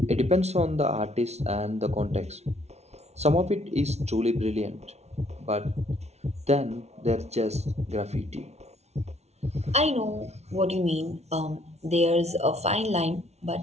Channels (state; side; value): late; left; 0.31 ms